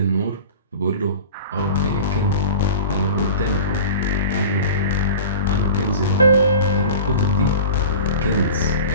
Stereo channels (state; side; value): inverted; both; correlation -0.36